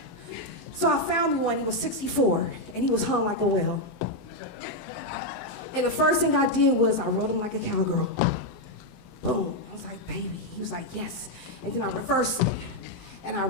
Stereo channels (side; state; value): right; late; 19 ms